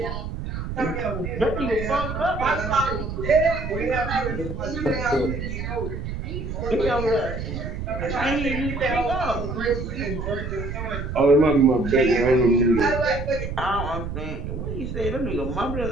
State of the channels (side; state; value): right; noise; rumble, 5 dB below the sound